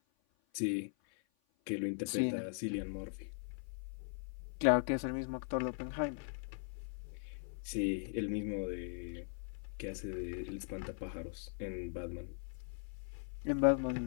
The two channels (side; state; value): right; silent; 51 dB below the other